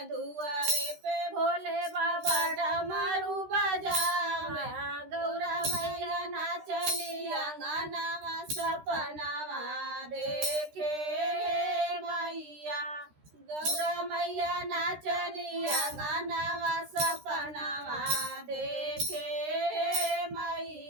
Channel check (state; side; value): late; left; 13 ms